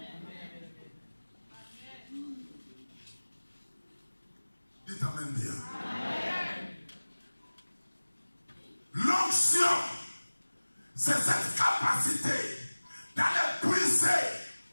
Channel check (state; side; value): inverted; both; correlation -1.00